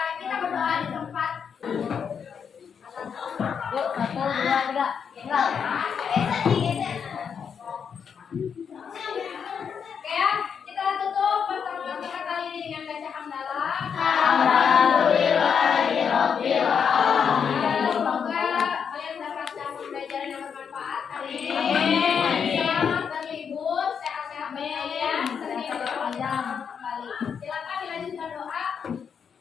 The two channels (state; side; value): quieter; right; 7.0 dB